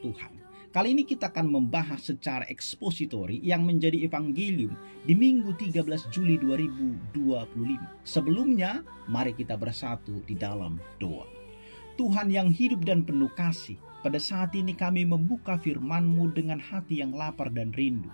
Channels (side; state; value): both; inverted; correlation -1.00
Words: Kali ini kita akan membahas secara ekspositori yang menjadi evangelium di Minggu 13 Juli 2025. Sebelumnya, mari kita bersatu di dalam doa. Tuhan yang hidup dan penuh kasih, pada saat ini kami membuka firman-Mu dengan hati yang lapar dan rindu.